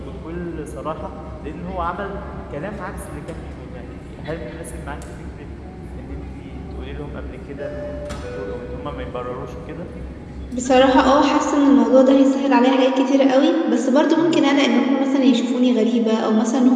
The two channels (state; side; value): identical; both; correlation 1.00